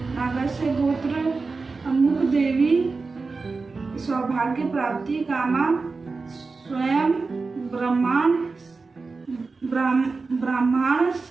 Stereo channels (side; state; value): left; quieter; 4.1 dB